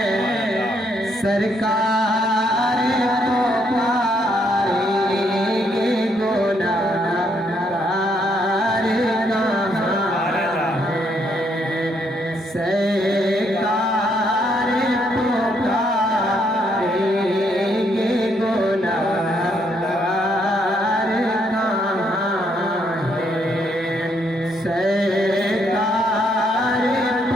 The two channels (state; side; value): normal; both; correlation 0.73